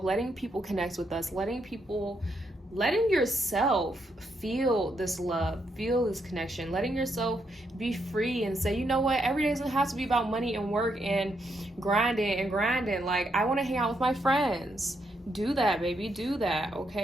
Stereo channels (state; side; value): normal; both; correlation 0.78